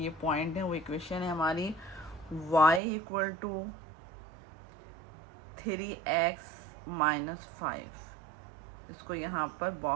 पॉइंट है। वो इक्वेशन है हमारी y इक्वल टू 3x -5। इसको यहाँ पर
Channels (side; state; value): left; drops out; at 2.8 s